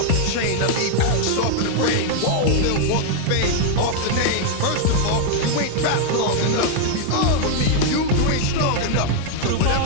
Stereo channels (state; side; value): different; both; correlation 0.00